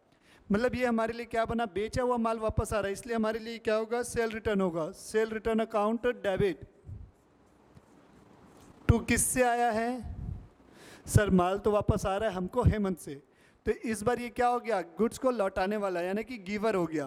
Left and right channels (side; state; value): both; identical; correlation 1.00